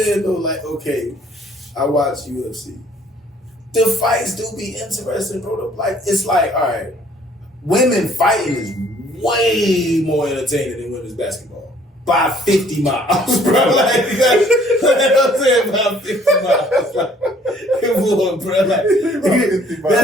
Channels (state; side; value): normal; both; correlation 0.60